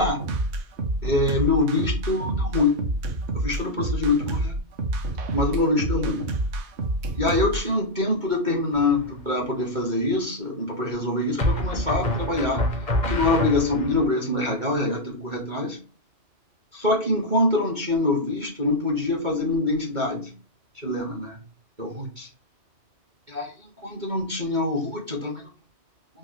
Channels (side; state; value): left; late; 2.2 ms